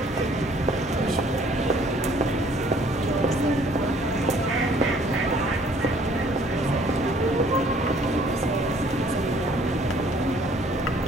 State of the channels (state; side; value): normal; both; correlation 0.59